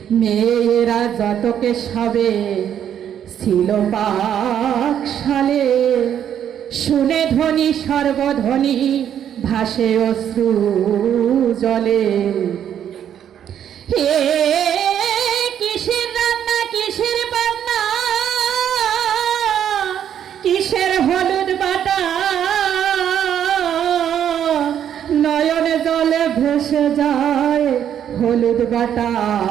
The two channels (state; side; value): quieter; left; 9.5 dB